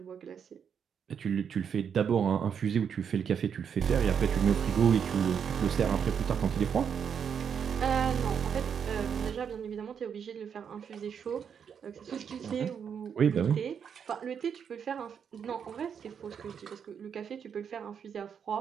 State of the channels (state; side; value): quieter; left; 7.4 dB